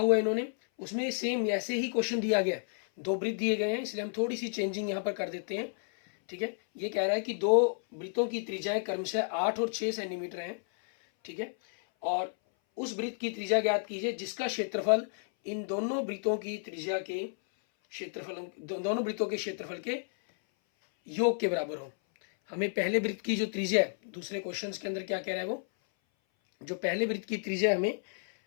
है इन्होंने, उसमें सेम ऐसे ही क्वेश्चन दिया गया, 2 वृत्त दिए गए हैं, इसलिए हम थोड़ी सी चेंजिंग यहाँ पर कर देते हैं। ठीक है, ये कह रहा है कि 2 वृत्तों की त्रिज्याएं क्रमशः 8 और 6 सेंटीमीटर हैं। ठीक है, और उस वृत्त की त्रिज्या ज्ञात कीजिए जिसका क्षेत्रफल इन दोनों वृत्तों की त्रिज्या के क्षेत्रफल, दोनों वृत्तों के क्षेत्रफल के योग के बराबर हो। हमें पहले वृत्त की जो त्रिज्या है, दूसरे क्वेश्चन के अंदर क्या कह रहा है, वो जो पहले वृत्त की त्रिज्या हमें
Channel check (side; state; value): right; silent; 57 dB below the other